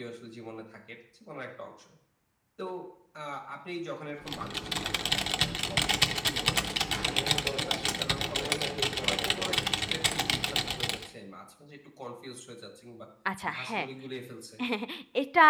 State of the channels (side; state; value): both; identical; correlation 1.00